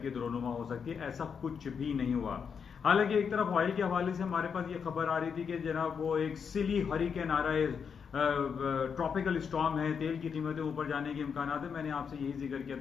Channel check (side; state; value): right; quieter; 6.5 dB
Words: रोनुमा हो सकती है। ऐसा कुछ भी नहीं हुआ। हालांकि एक तरफ ऑयल के हवाले से हमारे पास ये खबर आ रही थी कि जनाब वो एक सिली हरिकेन आ रहा है, ट्रॉपिकल स्टॉर्म है, तेल की कीमतें ऊपर जाने के इम्कान है। मैंने आपसे यही जिक्र किया